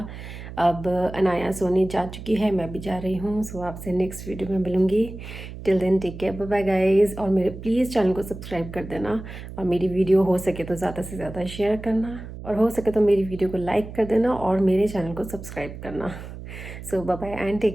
अब अनाया सोने जा चुकी है, मैं भी जा रही हूँ। सो आपसे नेक्स्ट वीडियो में मिलूँगी। Till then take care, bye bye guys. और मेरे प्लीज़ चैनल को सब्सक्राइब कर देना, और मेरी वीडियो हो सके तो ज़्यादा से ज़्यादा शेयर करना, और हो सके तो मेरी वीडियो को लाइक कर देना, और मेरे चैनल को सब्सक्राइब करना। So bye bye and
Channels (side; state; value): right; noise; hum, 12 dB below the sound